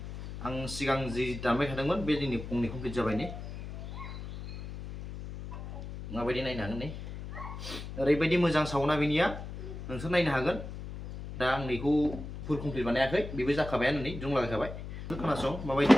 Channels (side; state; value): left; noise; hum, 9 dB below the sound